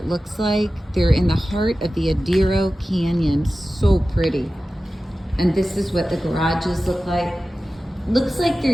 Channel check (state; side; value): normal; both; correlation 0.95